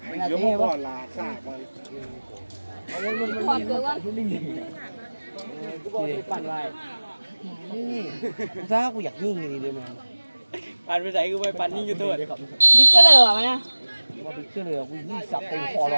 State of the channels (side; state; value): both; inverted; correlation -1.00